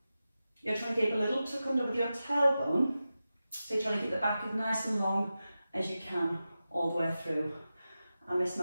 You're trying to keep a little tuck under with your tailbone, so you're trying to keep the back as nice and long as you can all the way through. I miss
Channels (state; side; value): inverted; both; correlation -0.93